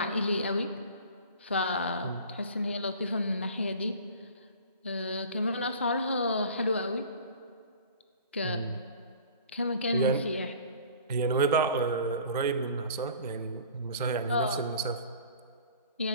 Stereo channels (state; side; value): inverted; both; correlation -0.45